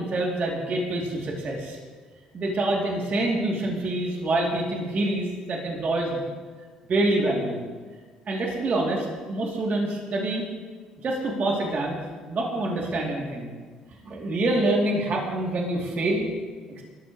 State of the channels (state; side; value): normal; both; correlation 0.70